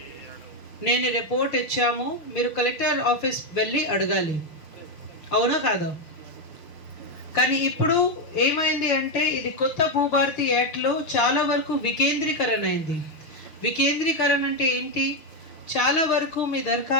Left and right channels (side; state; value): right; late; 6.2 ms